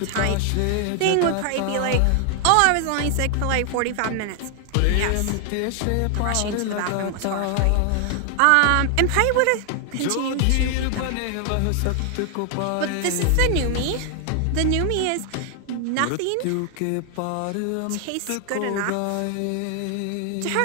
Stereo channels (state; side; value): different; both; correlation 0.00